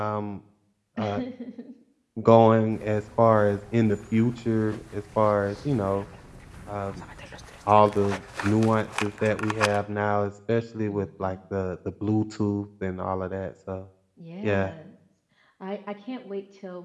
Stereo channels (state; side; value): identical; both; correlation 1.00